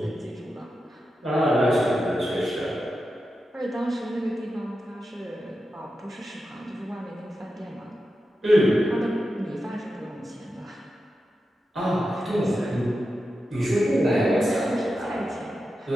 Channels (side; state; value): both; normal; correlation 0.90